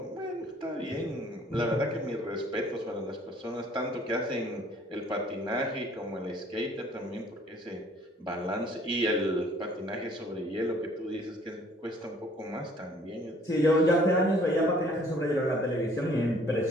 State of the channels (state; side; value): normal; both; correlation 0.57